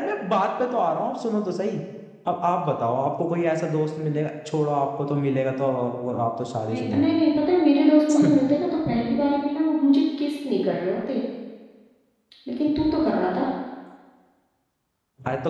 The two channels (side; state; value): both; identical; correlation 1.00